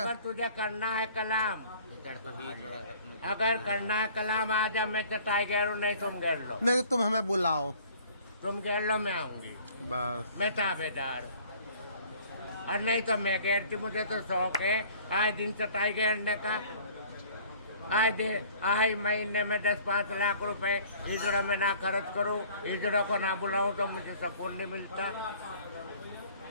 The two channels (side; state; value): both; inverted; correlation -0.52